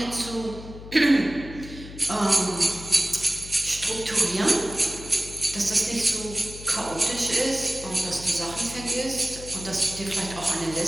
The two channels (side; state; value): left; noise; hum, 13 dB below the sound